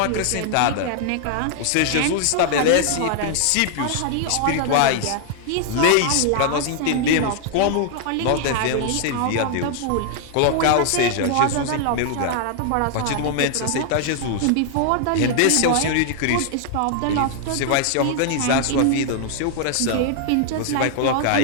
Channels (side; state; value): both; different; correlation 0.00